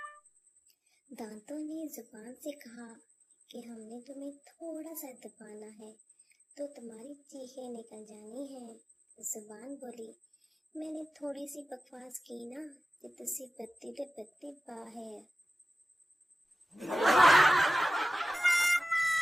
دانتوں نے زبان سے کہا کہ ہم نے تمہیں تھوڑا سا دبانا ہے تو تمہاری چیخیں نکل جانی ہیں۔ زبان بولی، میں نے تھوڑی سی بکواس کی نا کہ تسی بتی تے بتی باہر۔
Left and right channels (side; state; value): both; normal; correlation 0.95